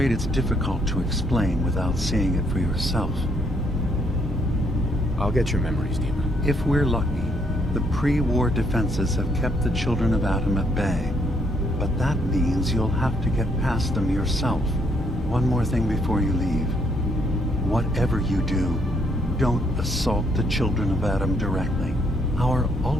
it's difficult to explain without seeing it for yourself. I'll get your memories, DiMA. If we're lucky, the pre-war defenses have kept the Children of Adam at bay. But that means you'll have to get past them yourself. One more thing before you leave. Whatever you do, don't assault the Children of Adam directly. Our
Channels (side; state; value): both; normal; correlation 0.71